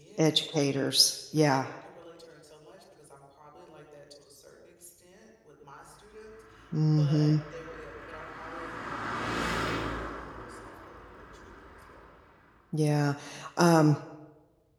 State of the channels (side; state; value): both; identical; correlation 1.00